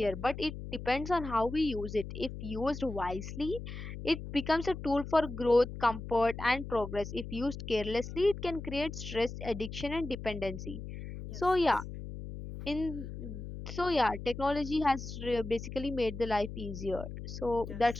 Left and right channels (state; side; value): noise; left; hum, 9 dB below the sound